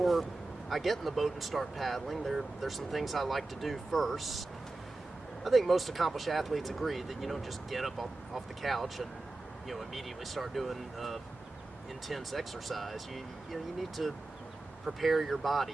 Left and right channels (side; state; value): left; quieter; 3.1 dB